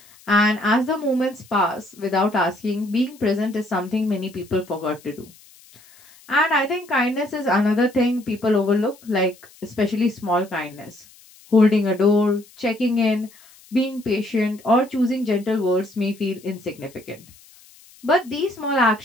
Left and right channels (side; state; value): left; noise; hiss, 25 dB below the sound